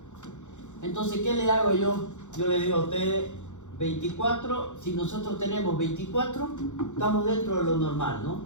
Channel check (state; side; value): late; right; 0.84 ms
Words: Entonces, ¿qué le hago yo? Yo le digo a ustedes 24, si nosotros tenemos 24, estamos dentro de lo normal, ¿no?